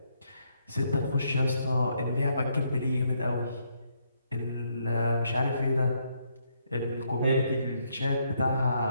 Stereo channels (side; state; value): both; inverted; correlation -0.74